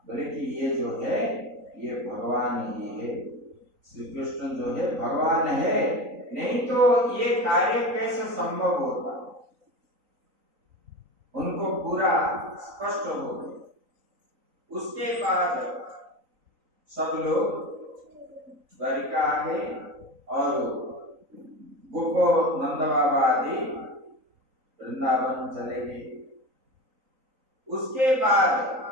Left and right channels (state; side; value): late; left; 3.9 ms